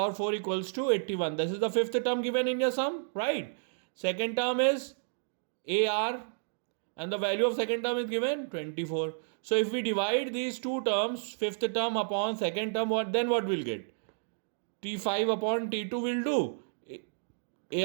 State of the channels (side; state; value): left; silent; digital silence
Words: 4 equals to 81. This is the fifth term given in your sum, right? Second term is AR and the value of second term is given 24. So if we divide these two terms, fifth term upon second term, what we'll get? T5 upon T2 will do